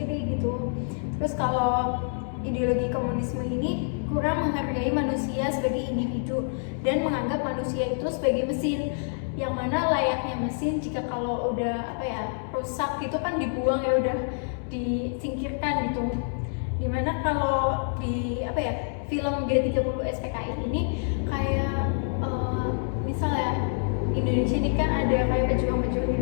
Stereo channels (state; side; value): silent; right; digital silence